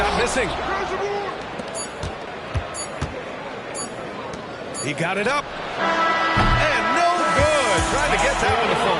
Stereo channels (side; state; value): both; identical; correlation 1.00